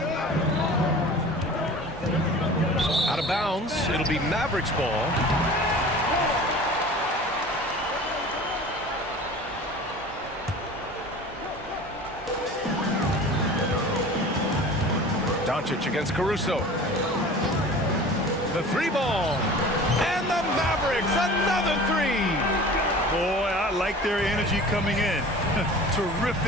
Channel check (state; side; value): normal; both; correlation 0.40